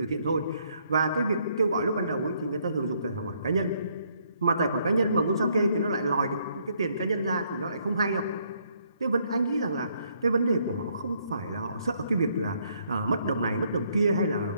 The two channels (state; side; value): inverted; both; correlation -0.70